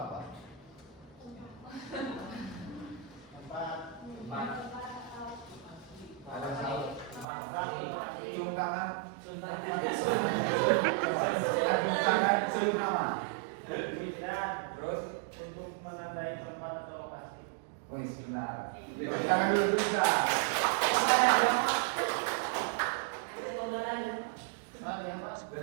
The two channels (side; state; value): left; drops out; at 7.2 s